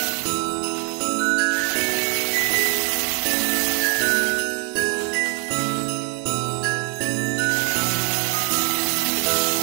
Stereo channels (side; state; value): left; quieter; 34.9 dB